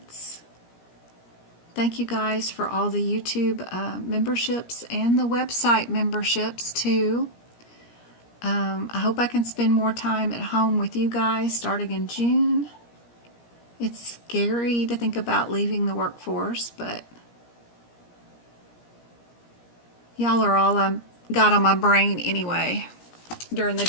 Thank you guys for all the YouTube memberships and the website memberships too. I hope I can spend more time at home with you guys starting in June. It's scary to think about leaving the workforce, but y'all are all I've got on my brain anyway during the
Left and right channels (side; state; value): right; late; 17 ms